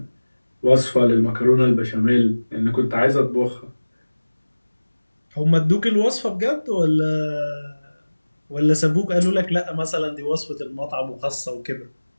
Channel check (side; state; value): both; inverted; correlation -1.00